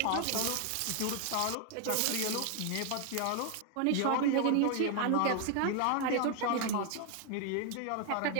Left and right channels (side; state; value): both; different; correlation 0.00